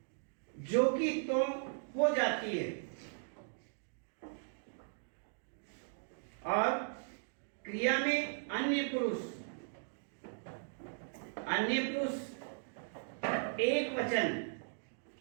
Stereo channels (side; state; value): left; silent; digital silence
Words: जो कि तुम हो जाती है और क्रिया में अन्य पुरुष एक वचन